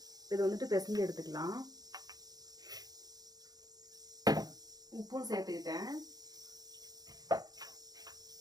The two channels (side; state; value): left; late; 0.19 ms